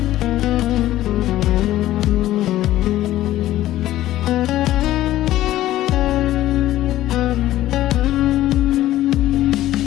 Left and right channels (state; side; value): quieter; right; 14.4 dB